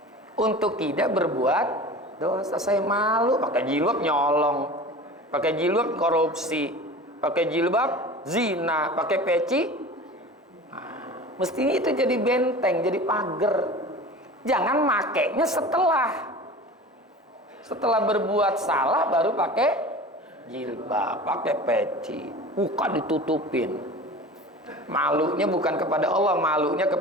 untuk tidak berbuat dosa. Saya malu pakai jilbab nyolong, pakai jilbab korupsi, pakai jilbab zina, pakai peci. Nah, mestinya itu jadi benteng, jadi pagar. Jangan makainya setelah berbuat salah baru pakai jilbab, pakai peci, muka ditutupin. Malunya bukan kepada Allah, malunya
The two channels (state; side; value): normal; both; correlation 0.36